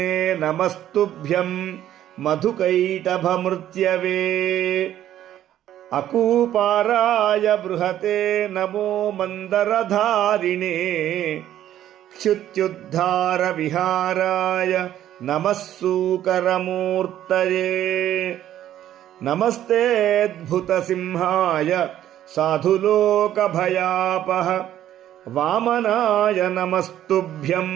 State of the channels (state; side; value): quieter; left; 11.9 dB